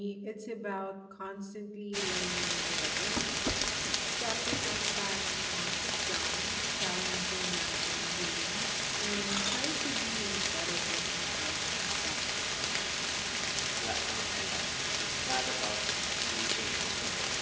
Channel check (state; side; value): identical; both; correlation 1.00